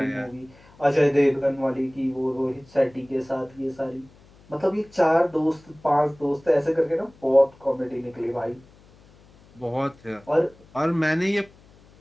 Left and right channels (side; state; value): left; noise; hum, 27 dB below the sound